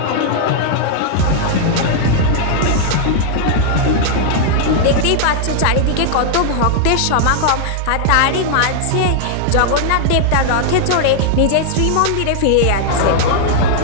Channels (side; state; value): both; different; correlation -0.01